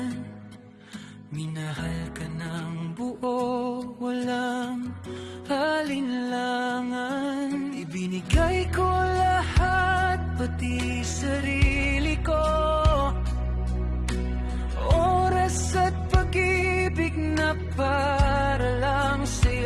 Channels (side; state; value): both; identical; correlation 1.00